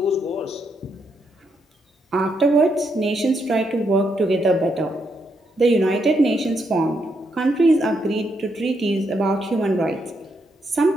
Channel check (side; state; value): both; normal; correlation 0.78